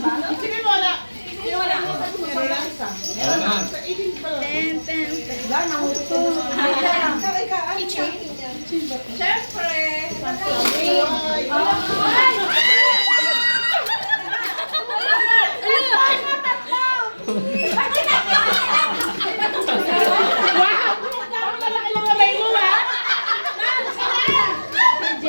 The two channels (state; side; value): inverted; both; correlation -1.00